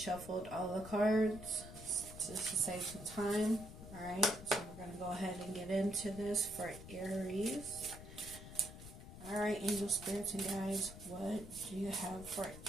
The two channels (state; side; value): noise; left; rumble, 13 dB below the sound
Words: all the cards just to save some time. Alright, so we're going to go ahead and get into this for Aries. Alright, angel spirits and guides, what do you have for